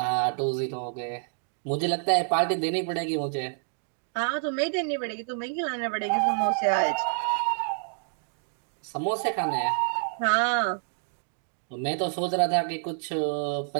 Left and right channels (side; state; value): left; silent; digital silence